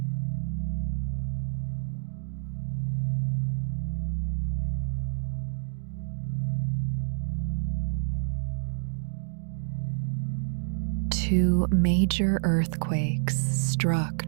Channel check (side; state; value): left; silent; digital silence